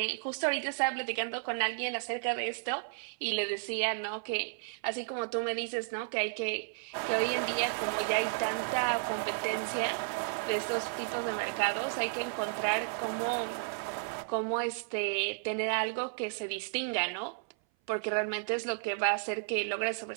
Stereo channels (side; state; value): left; silent; 56 dB below the other